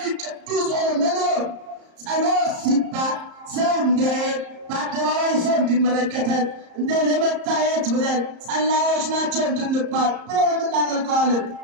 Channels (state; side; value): late; left; 34 ms